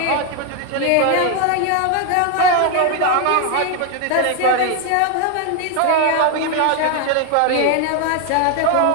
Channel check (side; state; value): both; different; correlation 0.01